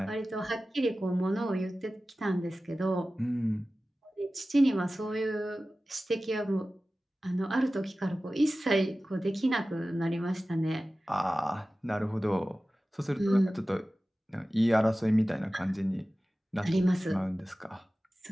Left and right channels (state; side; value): normal; both; correlation 0.96